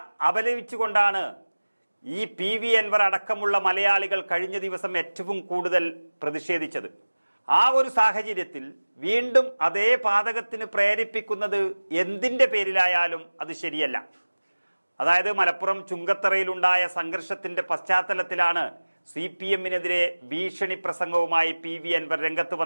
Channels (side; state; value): both; inverted; correlation -1.00